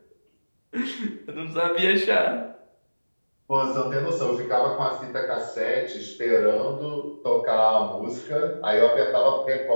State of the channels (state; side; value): inverted; both; correlation -1.00